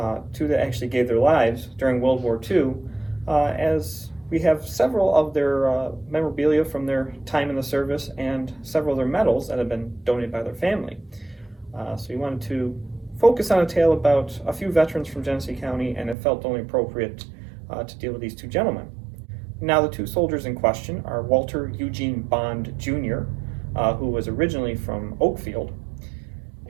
two that actually gave their lives during World War II, as we have several of their memorabilia from their time in the service and several of their medals that have been donated by their family. So we wanted to focus on a tale about a few veterans from Genesee County, and it felt only appropriate to deal with these two gentlemen. Now, the two soldiers in question are Walter Eugene Bond Jr., who was originally from Oakfield,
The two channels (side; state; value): left; drops out; at 16.2 s